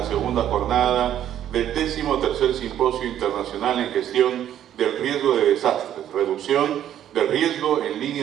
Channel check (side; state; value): left; quieter; 10.9 dB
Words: segunda jornada del 13º Simposio Internacional en Gestión del Riesgo de Desastres, Reducción del Riesgo en